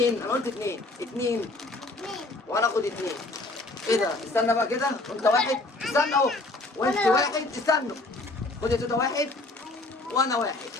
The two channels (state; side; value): quieter; right; 3.0 dB